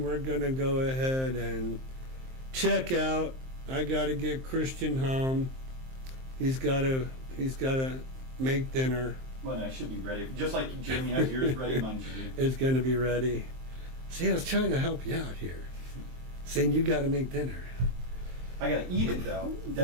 we're going to go ahead and check out. I got to get Christian home. He's got to make dinner. Well, I should be ready. Just like Jamie has yours ready, mine should be. It's going to be ready. See, I was trying to help you out here, saying you got to make dinner. I gotta eat it though,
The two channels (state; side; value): late; left; 23 ms